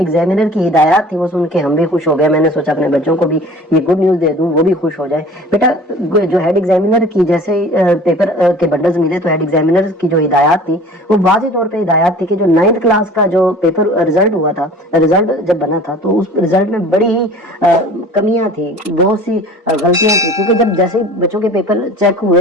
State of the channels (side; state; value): both; normal; correlation 0.44